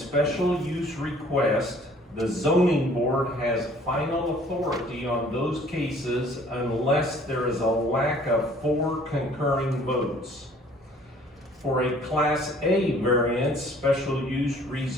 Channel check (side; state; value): both; normal; correlation 0.55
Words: use requests, the zoning board has final authority on those cases unless there is a lack of 4 concurring votes. For a Class A variance, special use,